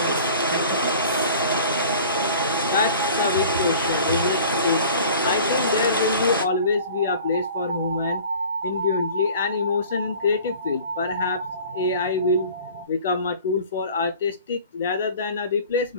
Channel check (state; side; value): inverted; both; correlation -0.46